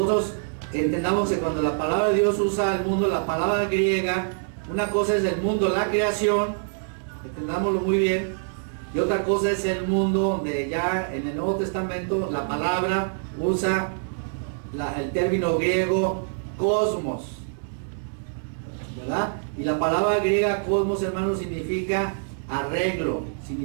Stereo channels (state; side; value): silent; left; digital silence